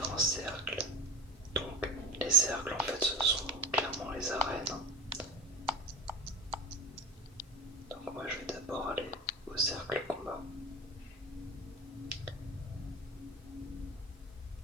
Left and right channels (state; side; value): normal; both; correlation 0.32